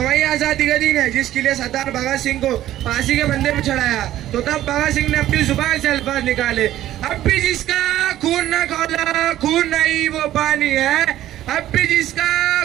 वही आज़ादी का दिन है जिसके लिए सरदार भगत सिंह को फांसी के फंदे में चढ़ाया तो तब भगत सिंह ने अपनी जुबान से अल्फाज निकाले, अब भी जिसका खून न खौला खून नहीं वो पानी है. अब भी जिसका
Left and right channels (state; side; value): quieter; left; 13.5 dB